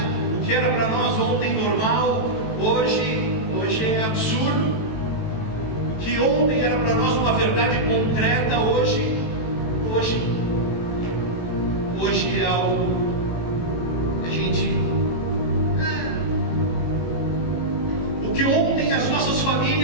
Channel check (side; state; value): right; late; 18 ms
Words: O que era para nós ontem normal, hoje é absurdo. O que ontem era para nós uma verdade concreta, hoje é algo que a gente... O que ontem as nossas